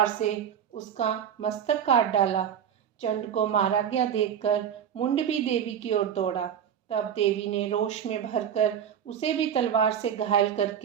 से उसका मस्तक काट डाला। चंड को मारा गया देखकर मुंड भी देवी की ओर दौड़ा। तब देवी ने रोष में भरकर उसे भी तलवार से घायल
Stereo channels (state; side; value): quieter; left; 8.9 dB